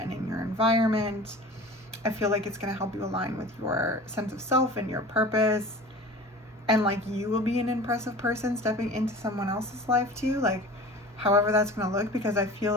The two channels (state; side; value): normal; both; correlation 0.39